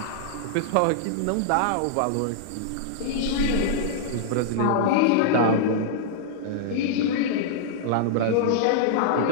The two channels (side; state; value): both; different; correlation -0.01